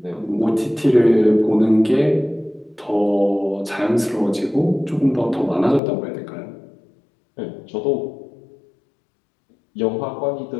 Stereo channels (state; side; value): drops out; right; at 5.8 s